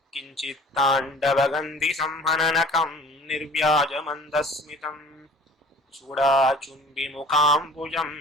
किञ्चित्ताण्डवगन्धिसंहननकम् निर्व्याजमन्दस्मितम् चूडाचुम्बिमुखाम्बुजम्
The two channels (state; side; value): normal; both; correlation 0.47